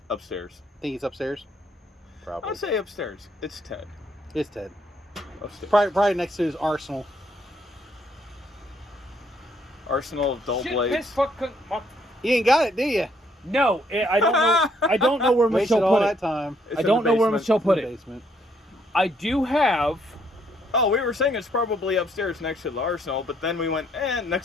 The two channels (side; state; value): both; normal; correlation 0.69